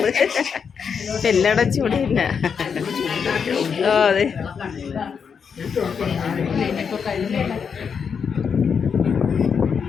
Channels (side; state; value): right; quieter; 6.5 dB